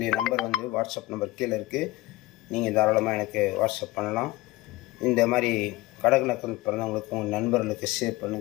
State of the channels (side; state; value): right; quieter; 19.3 dB